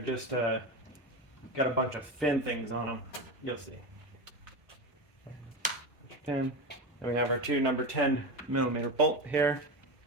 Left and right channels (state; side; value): normal; both; correlation 0.20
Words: got a bunch of fin things on them. You'll see. Pin. And we have our two number 10 millimeter bolt here